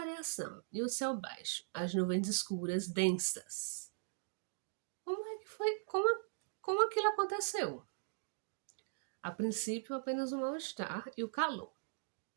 e o céu baixo, as nuvens escuras, densas. Como é que foi? Como aquilo aconteceu? A princípio, apenas o mal-estar e o calor.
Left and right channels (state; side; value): silent; left; digital silence